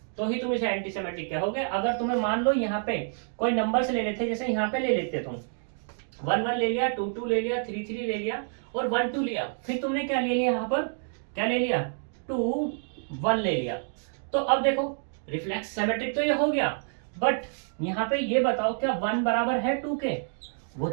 तो ही तुम इसे एंटीसिमेट्रिक कहोगे। अगर तुम्हें मान लो यहाँ पे कोई नंबर से ले लेते, जैसे यहाँ पे ले लेते तुम 1 1 ले लिया, 2 2 ले लिया, 3 3 ले लिया और 1 2 लिया, फिर तुमने क्या ले लिया, यहाँ पर क्या ले लिया, 2 1 ले लिया। तो अब देखो रिफ्लेक्स सिमेट्रिक तो ये हो गया, बट यहाँ पे ये बताओ क्या 1 बराबर है 2 के, वो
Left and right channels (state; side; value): silent; left; digital silence